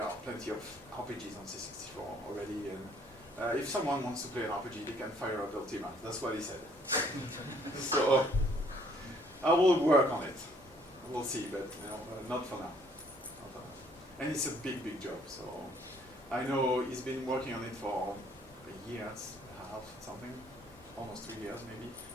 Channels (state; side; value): normal; both; correlation 0.63